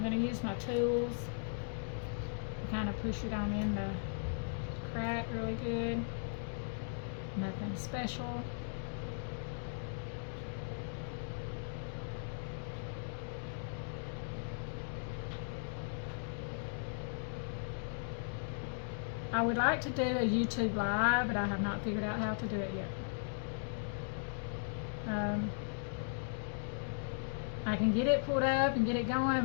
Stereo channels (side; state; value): right; silent; digital silence